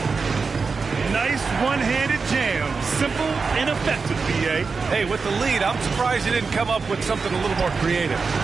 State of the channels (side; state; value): left; quieter; 4.8 dB